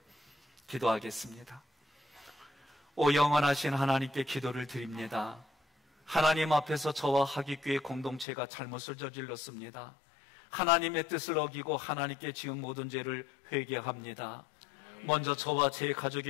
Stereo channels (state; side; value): drops out; right; at 8.2 s